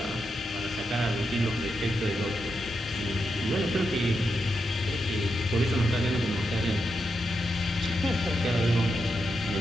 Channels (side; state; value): both; normal; correlation 0.85